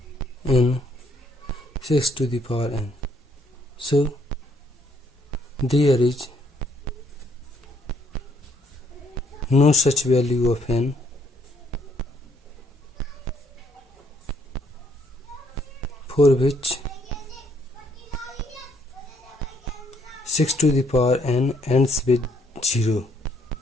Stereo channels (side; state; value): both; normal; correlation 0.69